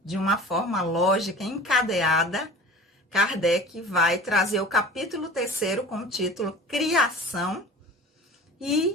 de uma forma lógica, encadeada, Kardec vai trazer o capítulo 3º com o título Criação,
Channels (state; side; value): normal; both; correlation 0.40